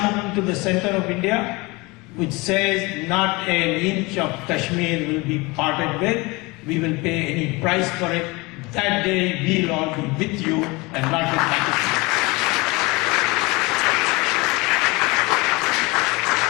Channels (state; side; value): quieter; right; 24.6 dB